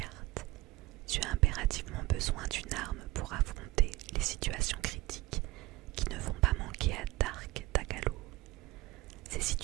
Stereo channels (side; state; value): left; quieter; 19.5 dB